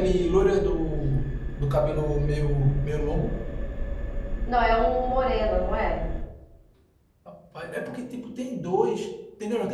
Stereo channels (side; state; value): both; identical; correlation 1.00